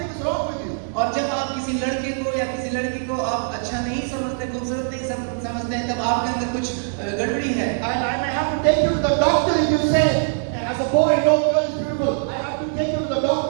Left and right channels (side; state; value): left; silent; digital silence